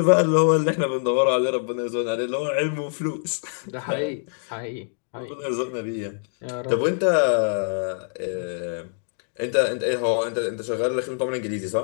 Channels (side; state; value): right; silent; digital silence